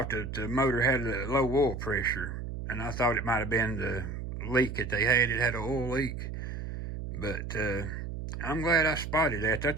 that the motor had a low oil pressure. And I thought it might have been the leak that they had. It had an oil leak. But I'm glad I spotted that.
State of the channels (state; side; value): noise; right; hum, 6 dB below the sound